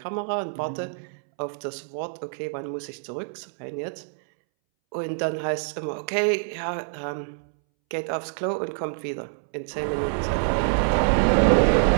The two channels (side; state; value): left; silent; 61 dB below the other